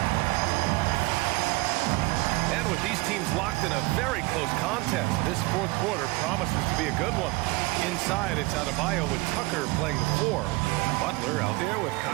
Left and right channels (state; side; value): quieter; left; 22.4 dB